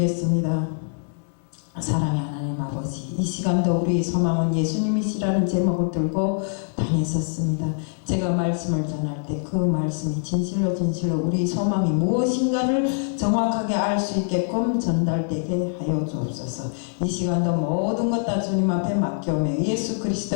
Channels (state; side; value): silent; right; digital silence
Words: 사랑의 하나님 아버지, 이 시간도 우리 소망은 예수님이시라는 제목을 들고 다녔었습니다. 제가 말씀을 전할 때 그 말씀이 진실로 우리 소망이 무엇인가를 정확하게 알 수 있게끔 전달되게 하여 주옵소서. 이 시간도 모든 것 다 주님 앞에 맡겨오며 예수 그리스도